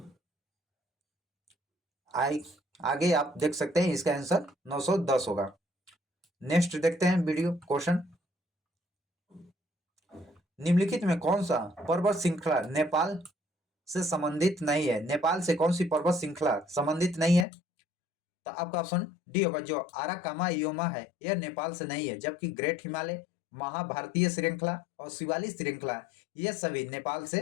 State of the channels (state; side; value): drops out; right; at 17.4 s